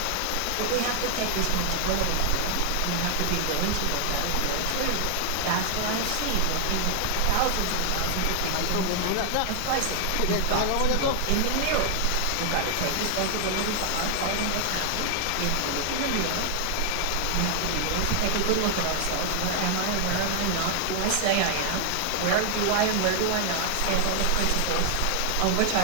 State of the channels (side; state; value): both; different; correlation 0.00